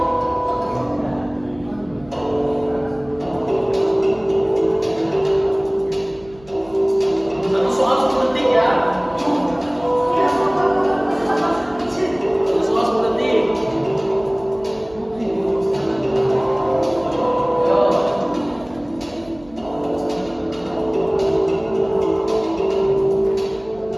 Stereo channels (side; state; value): right; noise; hum, 24 dB below the sound